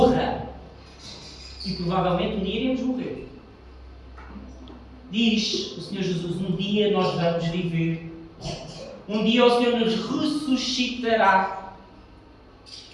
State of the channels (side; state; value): both; identical; correlation 1.00